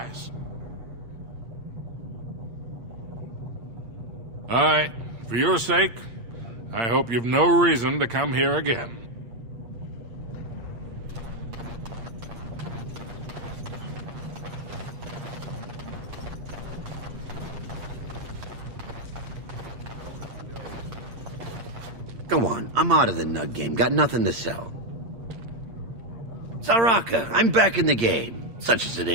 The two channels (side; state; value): left; late; 8.7 ms